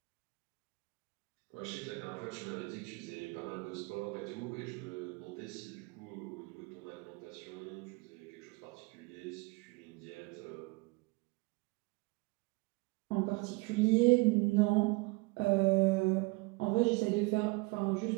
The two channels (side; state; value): left; quieter; 26.5 dB